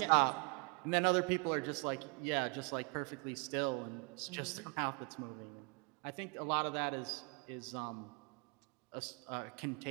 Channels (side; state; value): left; quieter; 34.3 dB